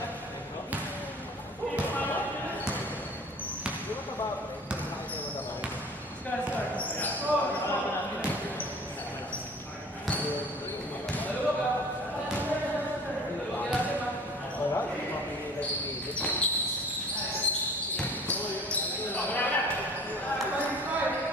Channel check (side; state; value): both; normal; correlation 0.45